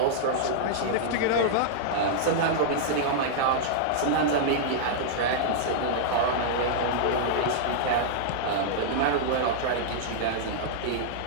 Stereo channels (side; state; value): both; different; correlation -0.02